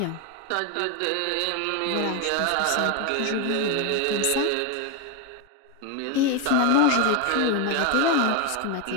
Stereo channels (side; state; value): both; different; correlation 0.02